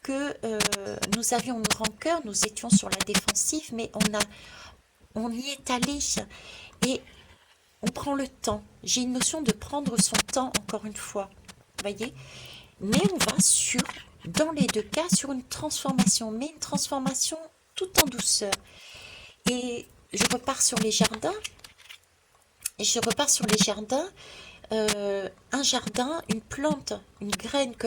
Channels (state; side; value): identical; both; correlation 1.00